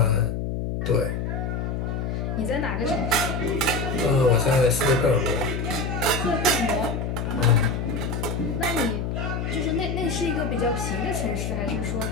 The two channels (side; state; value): left; noise; hum, 2 dB below the sound